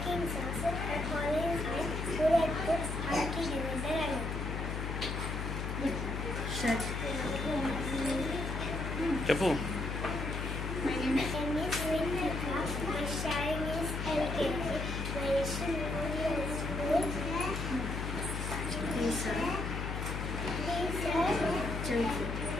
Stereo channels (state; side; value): noise; left; hum, 3 dB below the sound